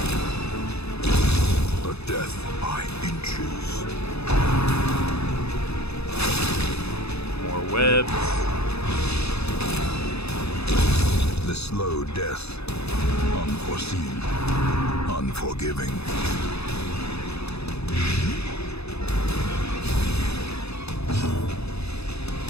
A death by inches. More webs. The slow death. Unforeseen. Unforgiving.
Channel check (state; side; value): late; right; 0.79 ms